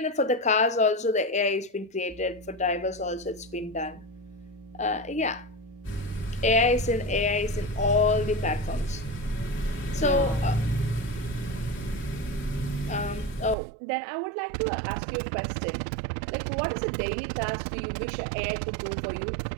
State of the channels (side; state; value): left; drops out; at 13.6 s